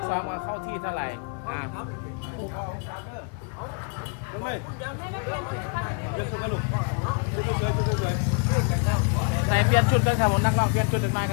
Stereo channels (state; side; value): quieter; right; 37.8 dB